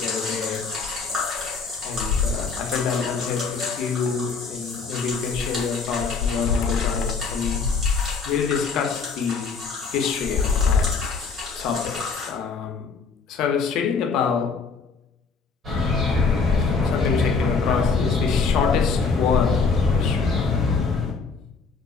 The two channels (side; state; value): right; quieter; 4.9 dB